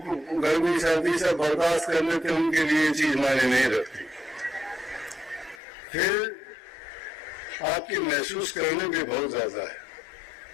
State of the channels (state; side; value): drops out; right; at 5.6 s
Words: गर्मी सर्दी से बर्दाश्त कर लेते, उनके लिए ये चीज मायने नहीं रखती। फिर आपकी महसूस करने भी बहुत ज्यादा है।